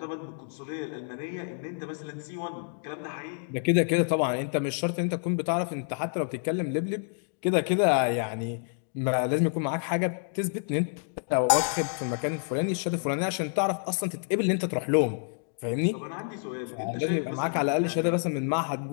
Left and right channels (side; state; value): right; silent; digital silence